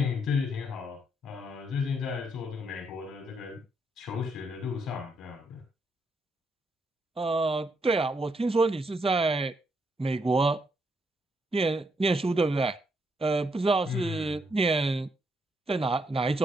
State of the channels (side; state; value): both; normal; correlation 0.77